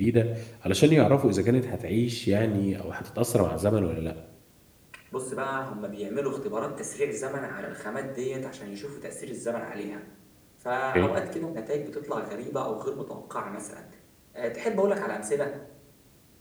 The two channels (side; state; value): both; identical; correlation 1.00